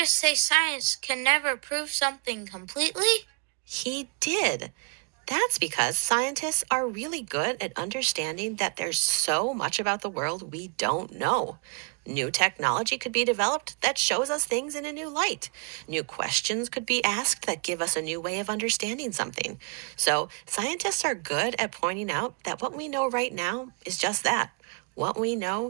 say science can never prove something completely? He did. That's because scientists are really good at understanding that there's so much about the world we don't know. New technology could be developed that shows us things in a new light. New questions could be asked that give us a new way of understanding something. So scientists are good at pointing out that what we know right now is just that, what we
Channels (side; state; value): left; quieter; 35.9 dB